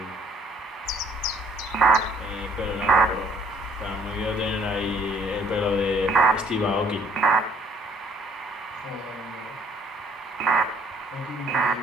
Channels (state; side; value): normal; both; correlation 0.61